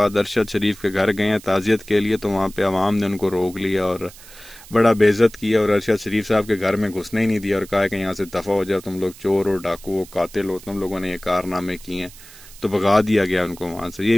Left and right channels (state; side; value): noise; right; hiss, 20 dB below the sound